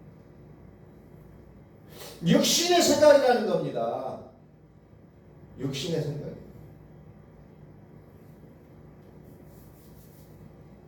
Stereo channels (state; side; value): identical; both; correlation 1.00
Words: 육신의 생각이라는 겁니다. 육신의 생각.